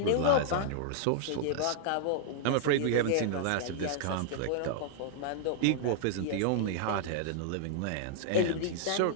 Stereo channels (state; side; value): different; both; correlation -0.01